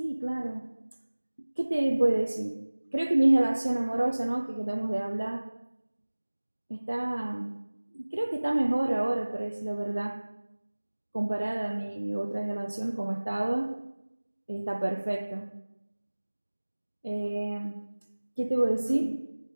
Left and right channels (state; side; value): inverted; both; correlation -1.00